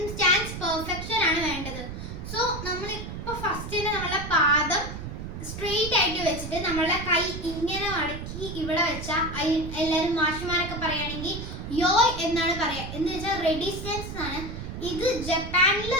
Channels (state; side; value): noise; right; rumble, 8 dB below the sound